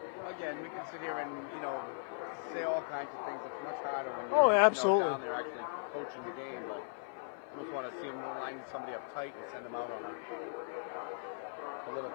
Again, we can sit here and, you know, say all kinds of things. It's much harder when you're down there actually coaching the game, but almost want to see them line somebody up tight and send them out on a little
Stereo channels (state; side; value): silent; right; 53 dB below the other